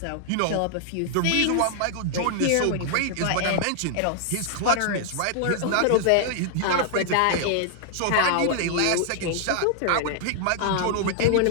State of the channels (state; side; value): different; both; correlation -0.01